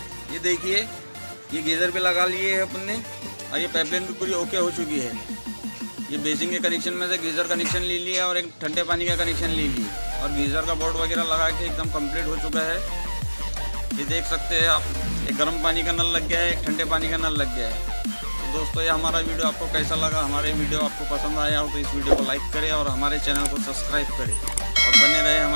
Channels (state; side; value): inverted; both; correlation -1.00